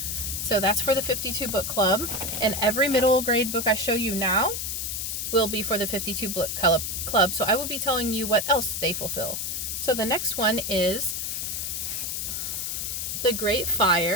So that's for the 52 book club, and every middle grade book I show you now will be for the 52 book club, so I will be telling you what else they fulfill. So the next one is The Great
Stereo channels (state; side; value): noise; left; hiss, 3 dB below the sound